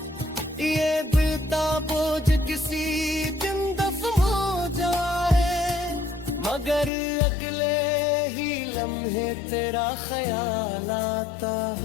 ये बिलता बोझ किसी दिन दफन हो जाए, मगर अगले ही लम्हे तेरा ख्याल आता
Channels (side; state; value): right; drops out; at 6.9 s